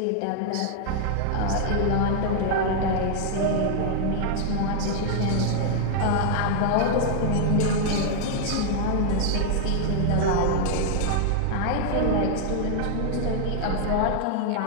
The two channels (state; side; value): different; both; correlation 0.00